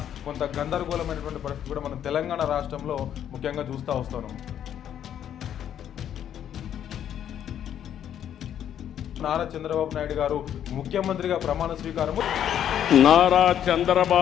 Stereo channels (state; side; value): quieter; right; 9.9 dB